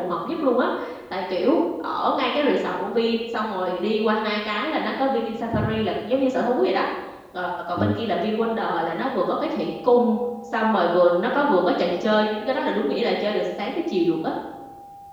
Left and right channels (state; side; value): identical; both; correlation 1.00